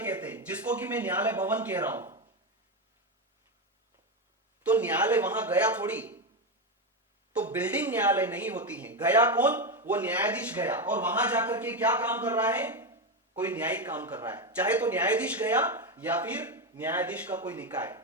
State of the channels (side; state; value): both; normal; correlation 0.11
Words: हैं, जिसको कि मैं न्यायालय भवन कह रहा हूं, तो न्यायालय वहां गया थोड़ी, तो बिल्डिंग न्यायालय नहीं होती है, गया कौन, वो न्यायाधीश गया, और वहां जाकर के क्या काम कर रहा है, कोई न्यायिक काम कर रहा है, चाहे तो न्यायाधीश गया या फिर न्यायाधीश का कोई निकाय,